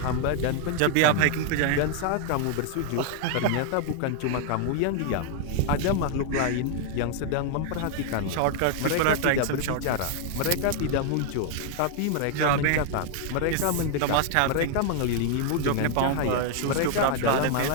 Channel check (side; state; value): both; different; correlation 0.00